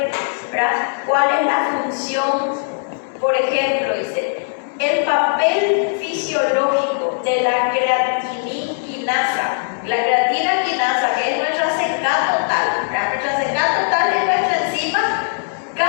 ¿verdad?, cuál es la función. Por ejemplo, dice, el papel fisiológico de la creatinina-quinasa. La creatina-quinasa, que es nuestra CK total. Nuestra CK total es nuestra enzima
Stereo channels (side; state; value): right; silent; 64 dB below the other